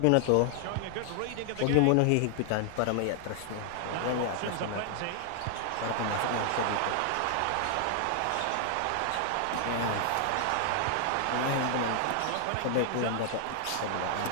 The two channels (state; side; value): different; both; correlation 0.00